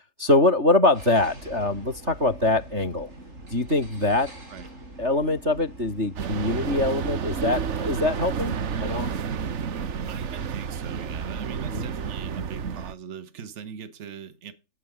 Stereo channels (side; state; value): left; late; 3.4 ms